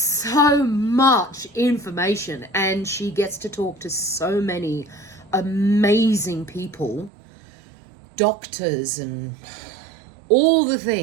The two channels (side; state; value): left; drops out; at 7.1 s